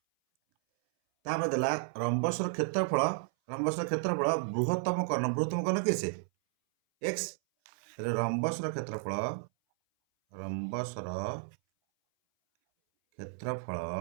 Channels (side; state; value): left; silent; 56 dB below the other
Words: ତାପରେ ଦେଲା ରମ୍ବସର କ୍ଷେତ୍ରଫଳ ବୃହତ୍ତମ କର୍ଣ୍ଣ କିଏ ସେ x। ତାହେଲେ ରମ୍ବସର କ୍ଷେତ୍ରଫଳ